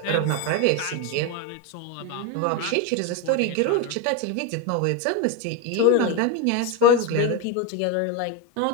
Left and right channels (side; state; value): both; different; correlation 0.03